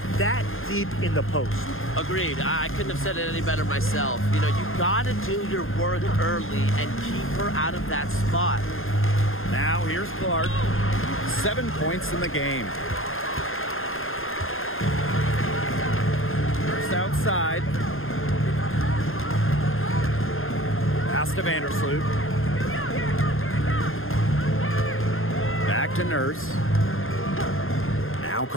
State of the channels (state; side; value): late; right; 0.60 ms